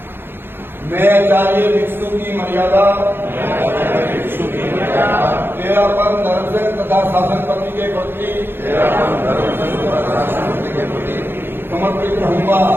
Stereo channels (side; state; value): left; late; 0.10 ms